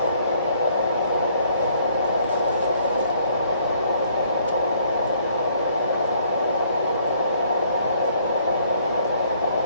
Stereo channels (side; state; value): both; inverted; correlation -0.64